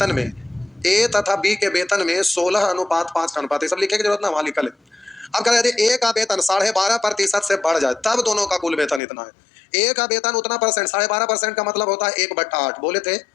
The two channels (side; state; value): right; drops out; at 9.0 s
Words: में, ए तथा बी के वेतन में 16:5 का अनुपात, ये सब लिखने की जरूरत ना, वहां लिखा है। अब कह रहे ए का वेतन 12.5% से बढ़ जाए तब दोनों का कुल वेतन इतना है। ए का वेतन उतना परसेंट, 12.5% का मतलब होता है 1/8। बोले थे